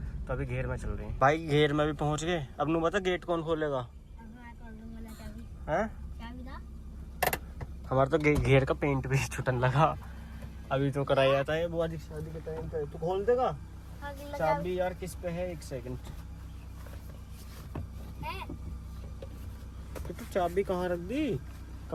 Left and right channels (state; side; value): identical; both; correlation 1.00